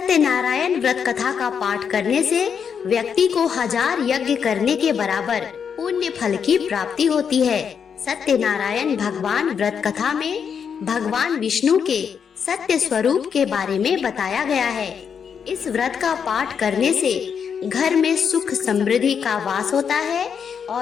व्रत कथा का पाठ करने से व्यक्ति को 1000 यज्ञ करने के बराबर पुण्य फल की प्राप्ति होती है। सत्यनारायण भगवान व्रत कथा में भगवान विष्णु के सत्य स्वरूप के बारे में बताया गया है। इस व्रत का पाठ करने से घर में सुख समृद्धि का वास होता है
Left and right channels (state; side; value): quieter; right; 7.0 dB